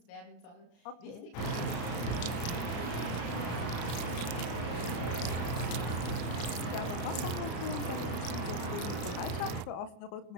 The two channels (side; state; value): right; late; 34 ms